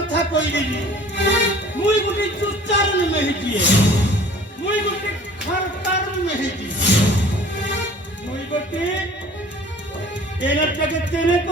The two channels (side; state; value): both; normal; correlation 0.48